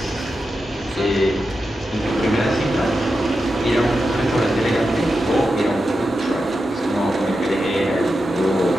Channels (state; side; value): normal; both; correlation 0.89